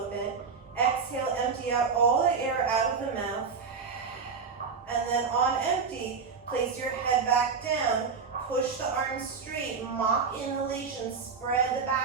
bit. Exhale, empty out all the air out of the mouth. And then on empty, place your head back down. Push the arms straight. Mock inhalation. Spread the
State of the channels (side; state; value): left; quieter; 5.4 dB